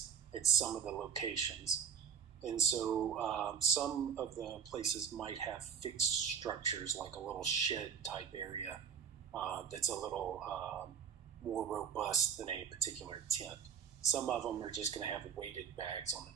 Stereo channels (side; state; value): left; quieter; 7.7 dB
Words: at some of the locations. And so some of the places might have fixed structures, like a little shed type area that's a little more robust than a particular tent. Some of them are just going to have weighted bags on